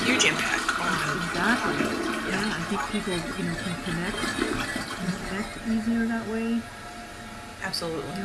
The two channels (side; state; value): both; identical; correlation 1.00